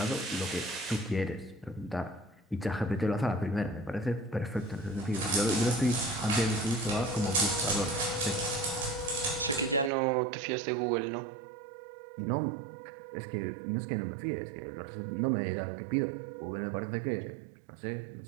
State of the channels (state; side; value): drops out; left; at 9.9 s